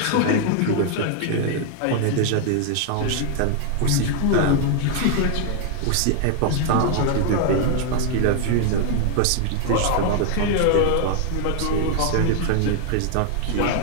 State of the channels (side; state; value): both; different; correlation 0.00